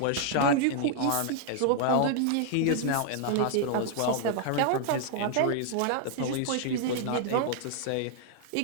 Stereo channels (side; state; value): both; different; correlation 0.00